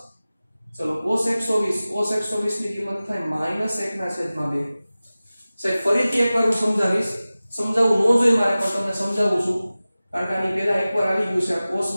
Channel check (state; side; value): inverted; both; correlation -0.97